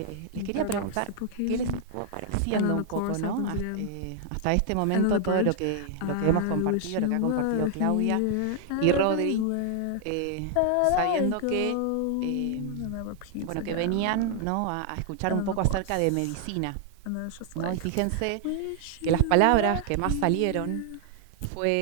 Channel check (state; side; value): different; both; correlation 0.00